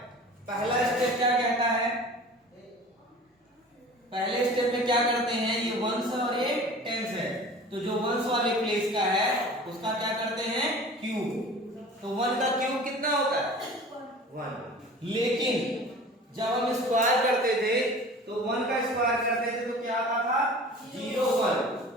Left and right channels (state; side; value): normal; both; correlation 0.41